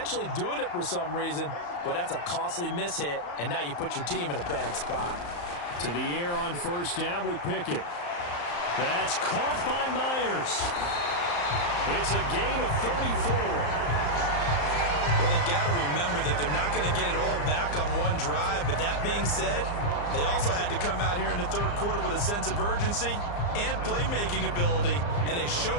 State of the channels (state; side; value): late; right; 34 ms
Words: doing it for some reason, well, that's a costly mishit, and now you put your team in a bad spot. To the air on first down with Pickett. That's caught by Myers. It's a gain of 34. Well, they've got to remember that they're not going to get it all back on one drive. But that being said, they also had to come out here in the third quarter with a sense of urgency and playmaking ability, and they